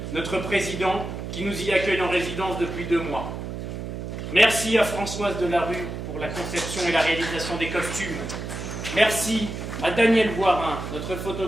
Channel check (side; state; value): right; noise; hum, 7 dB below the sound